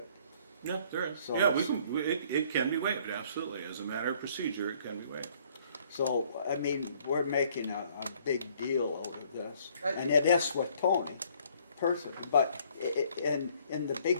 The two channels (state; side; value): inverted; both; correlation -0.61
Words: Yeah, there is. So Yeah, it's- it can be waived, absolutely. As a matter of procedure, it can be waived. So, I mean, we're making a big deal over this, I- and it is with Tony, personally, but in the